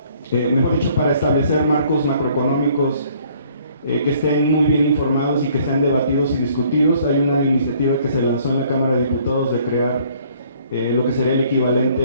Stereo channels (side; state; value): both; inverted; correlation -0.60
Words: mejor dicho, para establecer marcos macroeconómicos que estén muy bien informados y que sean debatidos y discutidos. Hay una iniciativa que se lanzó en la Cámara de Diputados de crear lo que sería el